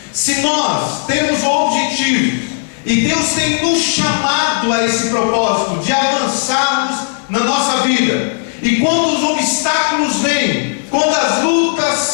Se nós temos o objetivo, e Deus tem nos chamado a esse propósito de avançarmos na nossa vida, e quando os obstáculos vêm, quando as lutas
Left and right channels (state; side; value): silent; right; digital silence